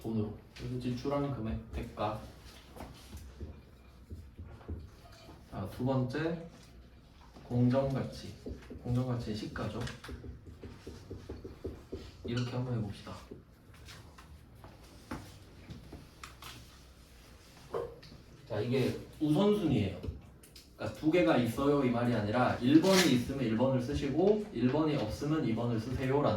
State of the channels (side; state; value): both; identical; correlation 1.00